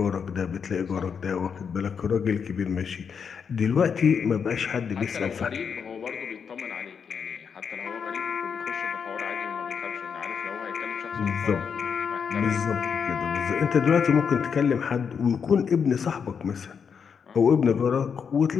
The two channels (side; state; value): right; quieter; 6.6 dB